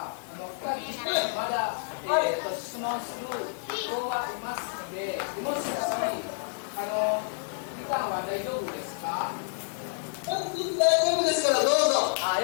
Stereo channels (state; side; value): silent; right; 58 dB below the other